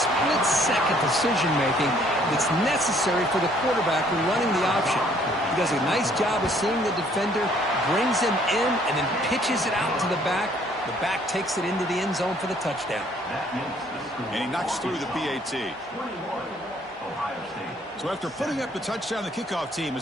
split-second decision-making that's necessary for the quarterback when running the option. He does a nice job of seeing the defender, brings him in, and then pitches it out to the back. The back takes it into the end zone for the touchdown. And he knocks through the PAT. So after putting up the touchdown, the kickoff team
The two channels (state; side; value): normal; both; correlation 0.62